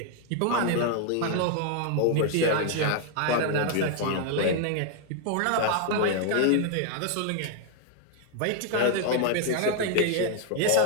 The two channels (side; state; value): both; different; correlation 0.00